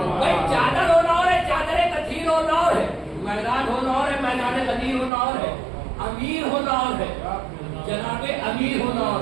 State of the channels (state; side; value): drops out; left; at 5.1 s